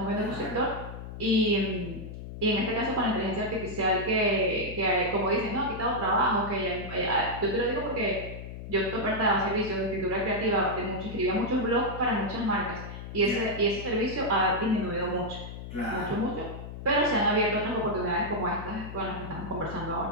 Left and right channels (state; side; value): noise; left; hum, 10 dB below the sound